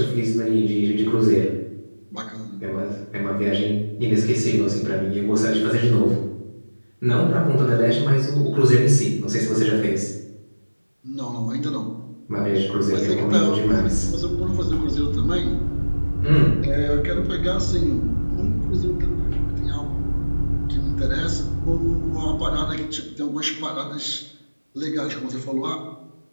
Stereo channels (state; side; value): inverted; both; correlation -1.00